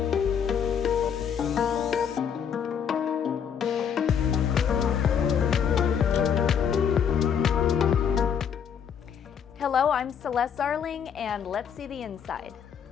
Hello, I'm Celeste Zarling, and let's see the inside.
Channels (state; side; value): quieter; right; 7.7 dB